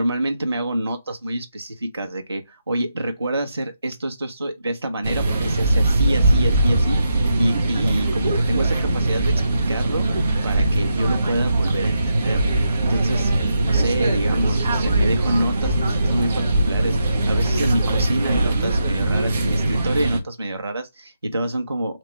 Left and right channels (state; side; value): inverted; both; correlation -0.85